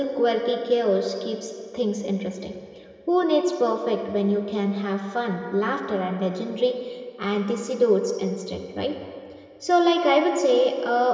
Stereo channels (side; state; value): both; identical; correlation 1.00